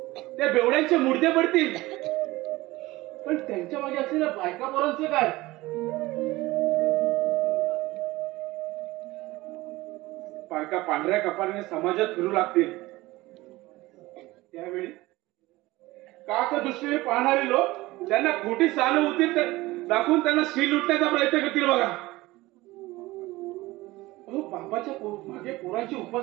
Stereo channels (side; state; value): left; quieter; 19.4 dB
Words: त्या बेवड्यांचे मुर्दे पडतील, पण त्यांच्या मागे असलेल्या बायका पोरांचं काय? बायका पांढऱ्या कपाळाने समाजात फिरू लागतील, त्यावेळी काक दृष्टीने पाहणारे लोक त्यांना खोटी सहानुभूती दाखवून त्यांना शील लुटण्याचा प्रयत्न करतील बघा. अहो, बापाच्या मागे पोरांची